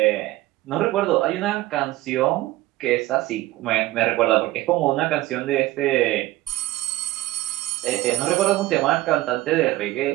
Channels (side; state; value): left; quieter; 17.0 dB